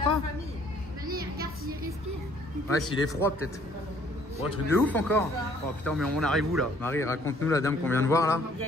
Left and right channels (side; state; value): both; normal; correlation 0.60